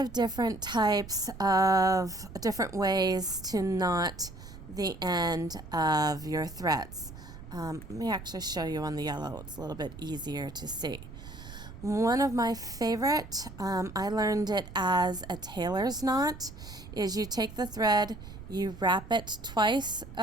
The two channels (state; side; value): noise; right; rumble, 14 dB below the sound